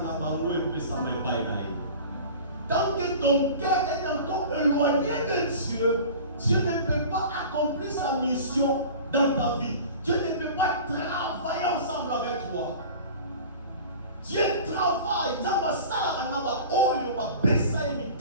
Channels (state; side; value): inverted; both; correlation -0.40